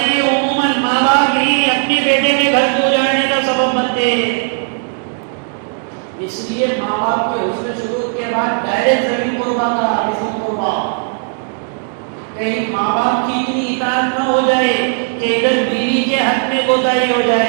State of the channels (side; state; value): left; silent; 57 dB below the other